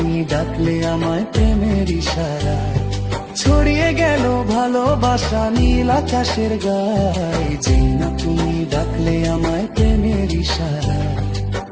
ডাকলে আমায় প্রেমের ইশারায়। ছড়িয়ে গেল ভালোবাসা নীল আকাশের গায়ে, যে না তুমি ডাকলে আমায় প্রেমের ইশারায়।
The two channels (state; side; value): identical; both; correlation 1.00